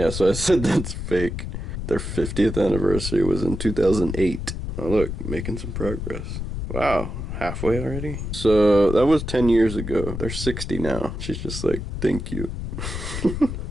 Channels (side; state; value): left; noise; rumble, 5 dB below the sound